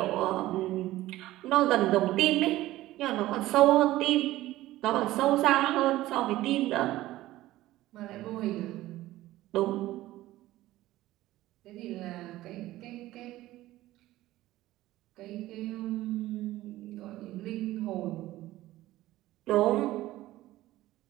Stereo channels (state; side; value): quieter; left; 16.1 dB